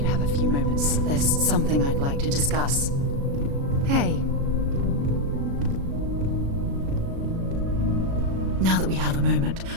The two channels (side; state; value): left; late; 36 ms